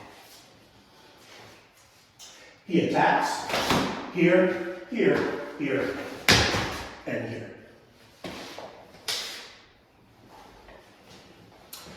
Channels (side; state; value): both; identical; correlation 1.00